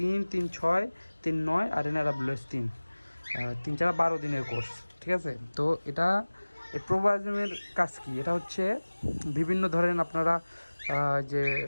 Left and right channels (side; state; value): both; inverted; correlation -1.00